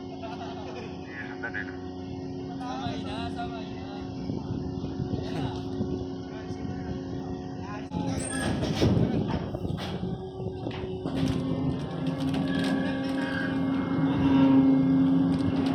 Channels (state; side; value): identical; both; correlation 1.00